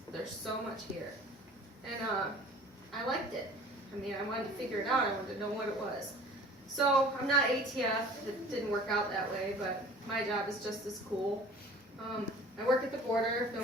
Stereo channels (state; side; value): normal; both; correlation 0.46